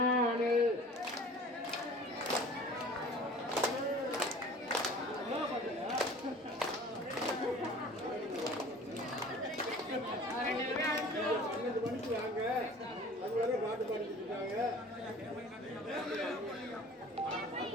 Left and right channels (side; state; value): both; normal; correlation 0.45